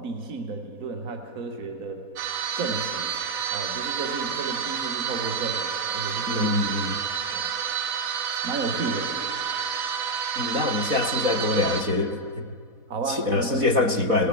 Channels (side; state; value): left; late; 4.1 ms